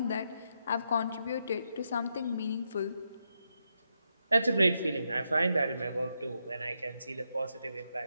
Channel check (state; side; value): inverted; both; correlation -0.82